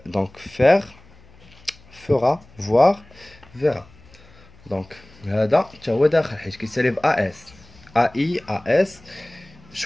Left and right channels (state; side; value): noise; left; hum, 26 dB below the sound